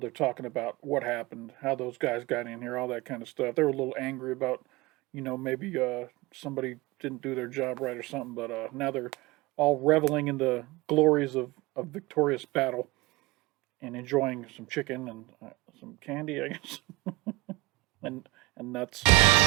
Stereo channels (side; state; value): left; quieter; 21.1 dB